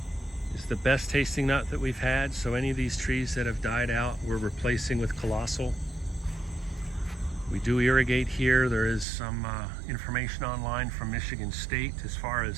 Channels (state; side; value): drops out; left; at 9.1 s